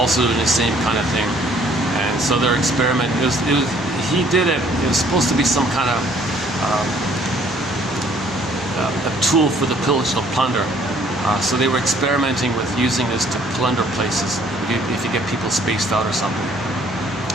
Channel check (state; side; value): normal; both; correlation 0.60